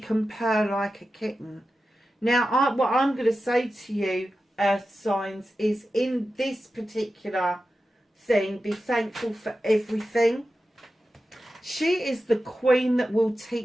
purr like a kitten. Now, what I'm going to say to you, earth signs, is in this particular thing, be thankful for everything. She is the queen that will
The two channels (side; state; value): both; normal; correlation 0.92